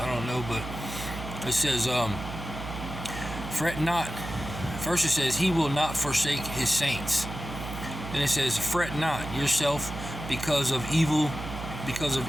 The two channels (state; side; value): noise; right; hum, 9 dB below the sound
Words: don't know, but it says, fret not. First it says, he will not forsake his saints. Then it says, fret not yourself because of